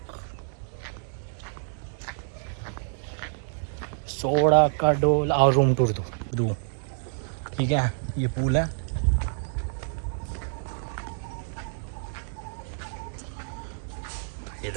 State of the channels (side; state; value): left; silent; digital silence